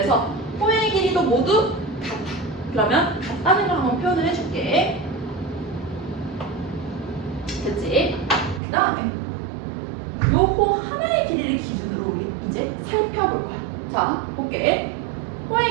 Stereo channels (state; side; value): drops out; left; at 8.6 s